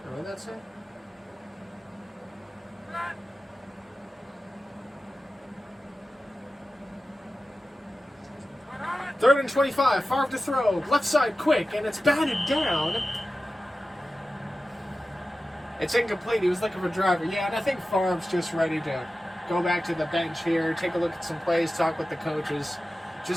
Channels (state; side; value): normal; both; correlation 0.94